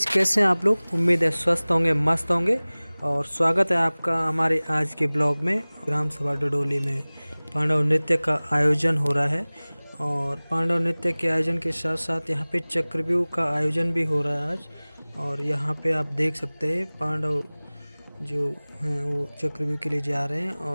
कैसे हैं आप लोग। उम्मीद है स्वस्थ होंगे, मस्त होंगे। और स्वागत है आपका हमारे आज के ब्लॉग में। ग्राम सभा डडोली में पांडव नृत्य का आयोजन हो रहा है और पांडव नृत्य के आयोजन के साथ साथ यहाँ पे चक्रव्यूह का आयोजन भी हो रहा है आज। और यहाँ पे आप देख सकते हैं पांडव जो हैं वो चक्रव्यूह के लिए जा रहे हैं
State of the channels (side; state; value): both; inverted; correlation -1.00